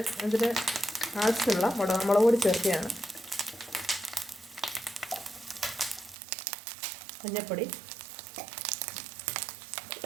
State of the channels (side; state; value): left; drops out; at 6.2 s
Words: അതിന് ആവശ്യമുള്ള മുളക് പൊടി ചേർക്കുകയാണ്. മഞ്ഞൾപ്പൊടി,